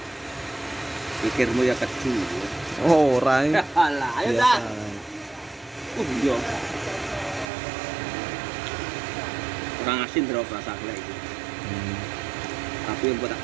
Pikirmu ya kecil. Oh, ora. Alah, ayo dah. Iya. Kurang asin terus rasa gula itu. Tapi yang buat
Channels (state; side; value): drops out; left; at 7.5 s